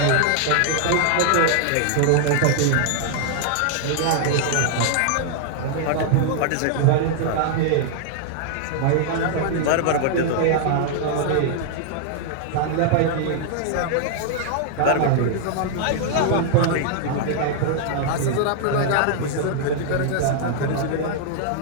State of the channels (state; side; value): different; both; correlation -0.01